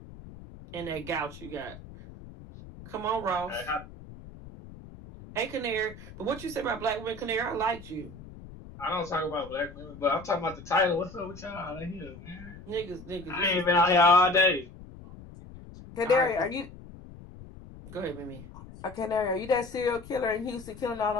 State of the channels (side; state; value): left; noise; rumble, 16 dB below the sound